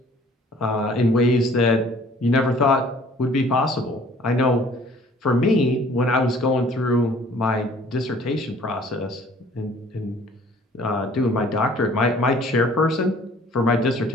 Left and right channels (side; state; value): both; normal; correlation 0.54